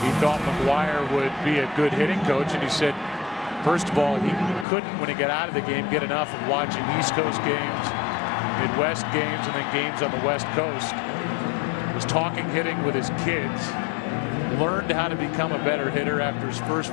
thought McGuire would be a good hitting coach, and he said, first of all, he couldn't, when he got out of the game, get enough of watching East Coast games, Midwest games, and then games on the West Coast. Was talking hitting with his kids. Learned how to become a better hitter after his first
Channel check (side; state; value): right; drops out; at 4.7 s